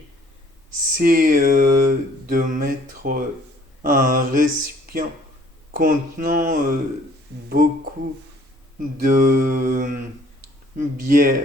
c'est de mettre un récipient contenant beaucoup de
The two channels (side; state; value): both; normal; correlation 0.58